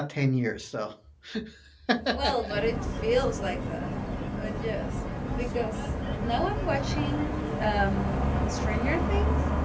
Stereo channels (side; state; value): both; identical; correlation 1.00